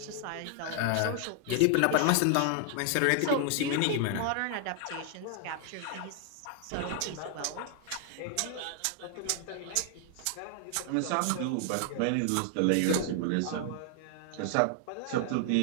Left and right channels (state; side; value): different; both; correlation 0.00